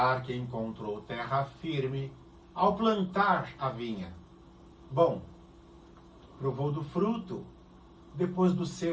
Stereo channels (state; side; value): identical; both; correlation 1.00